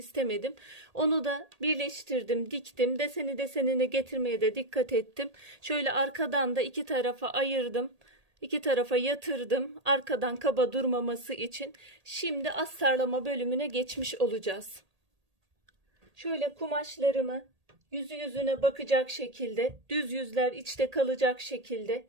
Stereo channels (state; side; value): late; left; 1.8 ms